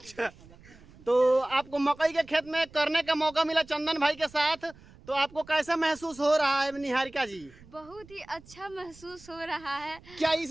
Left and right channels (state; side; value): noise; right; rumble, 23 dB below the sound